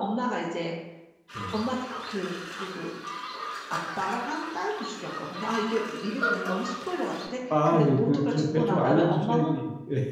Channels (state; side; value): identical; both; correlation 1.00